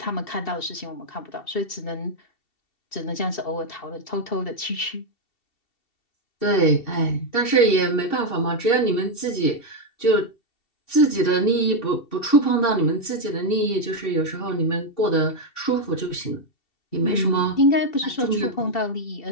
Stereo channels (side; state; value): right; late; 2.7 ms